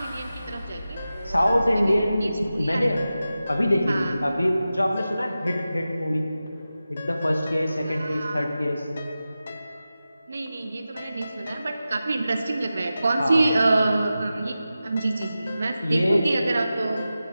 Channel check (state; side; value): inverted; both; correlation -0.93